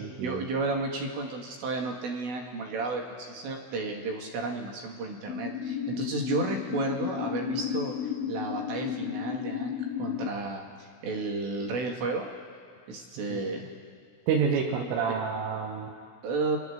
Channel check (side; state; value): left; late; 16 ms